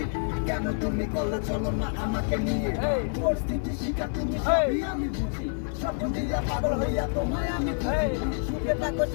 কেন তুমি করলে চলো না আমাকে নিয়ে পরিস্থিতি শিখা তুমি সবই আমি বুঝি সব দিয়া পাগল হইয়া তোমায় আমি সুখে থাকো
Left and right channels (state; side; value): silent; right; 60 dB below the other